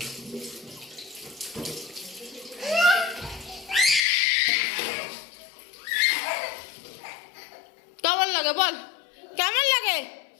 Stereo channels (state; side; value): drops out; right; at 4.0 s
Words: কেমন লাগে বল, কেমন লাগে?